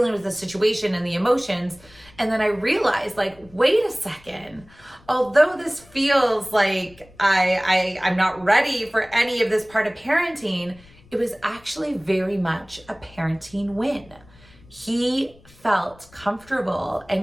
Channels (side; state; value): left; noise; rumble, 26 dB below the sound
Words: with the situation and the emotions. And then I realized, wait a second, although this feels like I'm not ready for any of this part of parenting, it was actually very much a parenting win. He felt comfortable